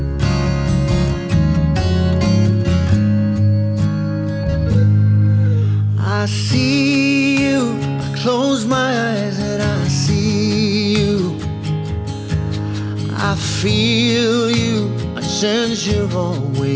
I see you, I close my eyes and I see you. I feel you, I sense you're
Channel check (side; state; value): both; identical; correlation 1.00